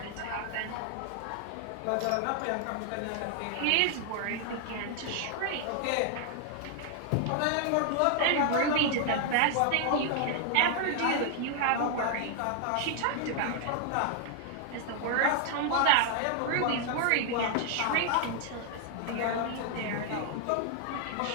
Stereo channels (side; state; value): both; different; correlation 0.00